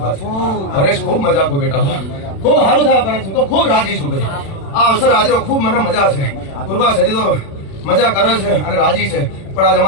છે. હરેશ ખૂબ મજા ખૂબ બેટા. ખૂબ સારું થયા પરંતુ તો ખૂબ રાજી છું ભાઈ. આ અવસર આજે ખૂબ મને મજા છે. પૂર્વા સદી તો મજા કરે છે અને રાજી છે. પણ આજ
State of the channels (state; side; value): late; right; 36 ms